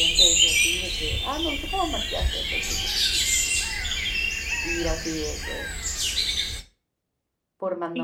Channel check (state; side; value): identical; both; correlation 1.00